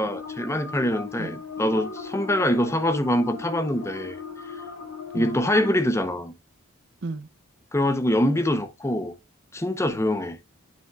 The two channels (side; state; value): both; normal; correlation 0.73